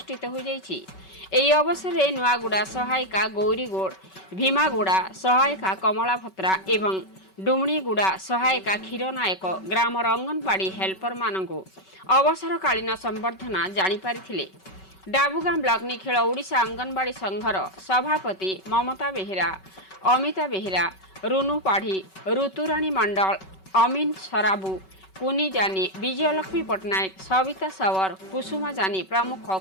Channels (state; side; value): late; right; 5.3 ms